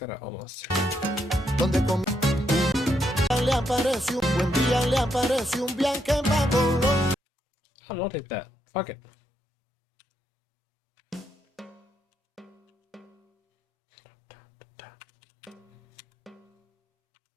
almost. Donde le apareció buen día le apareció un viaje para Colombia. I'll take that. Fuck it.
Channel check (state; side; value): normal; both; correlation 0.78